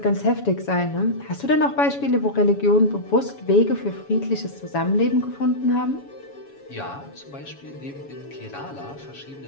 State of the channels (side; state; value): right; late; 7.1 ms